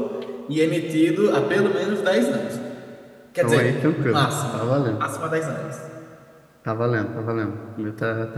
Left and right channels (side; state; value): both; identical; correlation 1.00